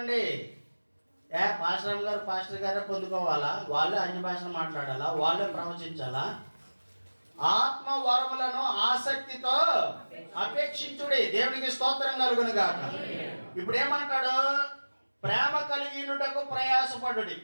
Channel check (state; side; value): inverted; both; correlation -1.00